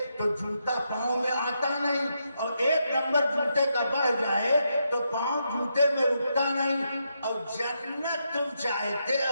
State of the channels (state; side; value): inverted; both; correlation -0.82